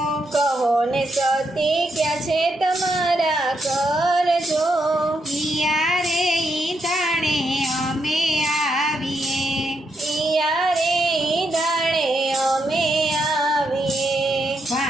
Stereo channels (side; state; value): both; normal; correlation 0.80